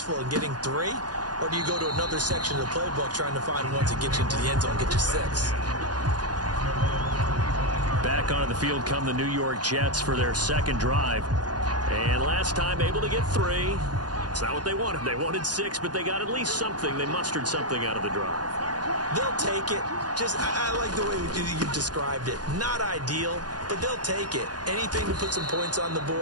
in getting 3? Or do you go to another section of the playbook trying to find ones that get you into the end zone and get you 6? Back onto the field come the New York Jets for their 2nd drive. And last time able to get 3. It's not what they wanted. They wanted 6, but they got at least something. They mustered something out of the drive. They'll take it. I like the way you described it. Not ideal, but they'll take it. Anything to put some points on the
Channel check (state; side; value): late; left; 0.69 ms